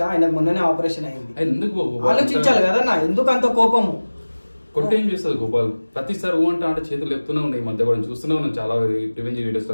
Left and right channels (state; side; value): inverted; both; correlation -1.00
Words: ఆయనకు మొన్ననే ఆపరేషన్ అయింది. ఆలోచించాలి కదన్నా, ఎందుకు అంత కోపము? కొట్టేం చేస్తుంది గోపాల్? ప్రతిసారి ఊ అంటే చేతులు చెప్తూనే ఉన్నాయి. మధ్య కూడా చూస్తూనే ఉన్నాం చాలా రివెంజ్ వీడియోస్